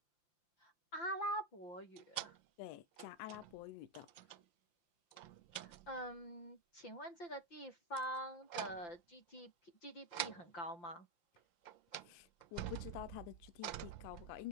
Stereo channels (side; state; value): right; late; 5.7 ms